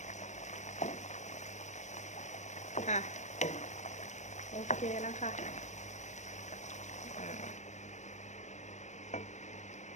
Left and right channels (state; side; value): late; right; 0.34 ms